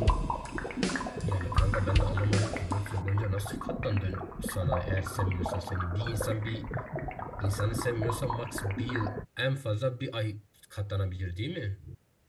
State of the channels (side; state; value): both; identical; correlation 1.00